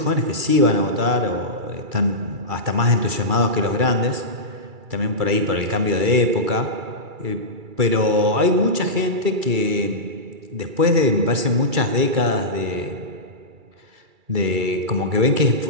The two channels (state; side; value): late; left; 2.3 ms